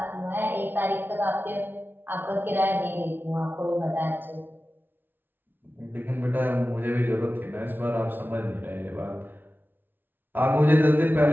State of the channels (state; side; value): late; left; 0.095 ms